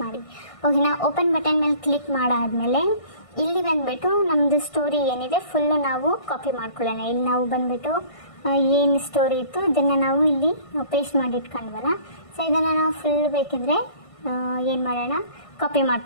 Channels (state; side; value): late; right; 1.6 ms